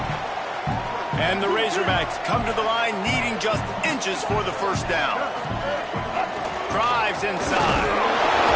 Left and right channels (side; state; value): both; identical; correlation 1.00